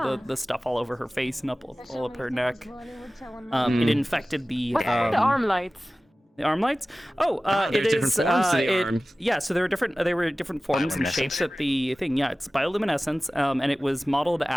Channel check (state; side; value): normal; both; correlation 0.97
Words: the stuff all over her face and all up her neck. It infected the What's the arm lights? The arm lights? Oh, it different is. forms to the arm. Yeah, so there were different. They were different forms and shapes at the thing. Yeah, it's bioluminescence, and it was modeled